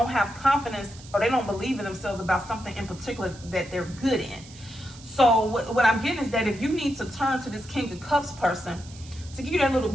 have confidence or they don't believe in themselves about something in particular that they're good in. So what I'm getting is that if you need to turn to this King of Cups person to give you that little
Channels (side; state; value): right; noise; hiss, 20 dB below the sound